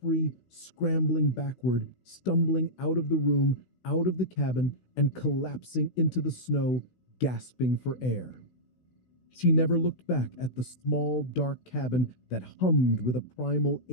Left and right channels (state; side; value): late; right; 16 ms